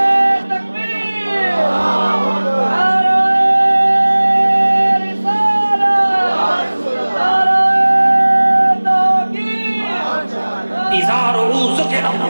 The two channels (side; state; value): both; inverted; correlation -1.00